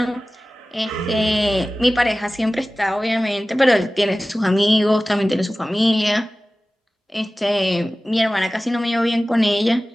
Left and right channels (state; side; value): normal; both; correlation 0.97